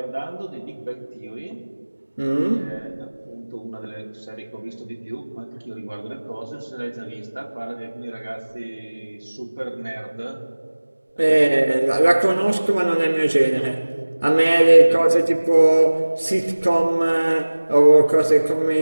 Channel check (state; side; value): inverted; both; correlation -1.00